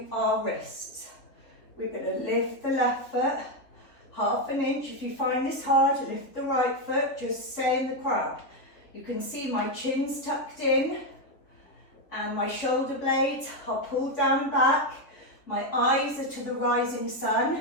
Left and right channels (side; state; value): right; late; 3.5 ms